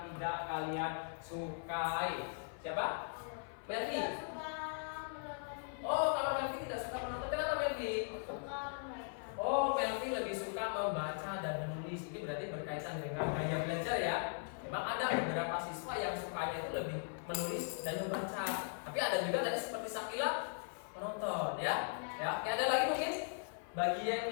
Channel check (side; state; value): right; silent; 52 dB below the other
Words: tidak kalian sukai? Siapa? Melvi. Oh, kalau Melvi tidak suka menonton, kenapa Melvi? Oh, Melvi lebih suka membaca dan menulis. Ini berarti berkaitan dengan gaya belajar ya. Memang ada beberapa siswa yang sukanya itu lebih menulis dan membaca. Tapi ada juga tadi seperti Sakila menonton ya. Ya, ada lagi mungkin bagian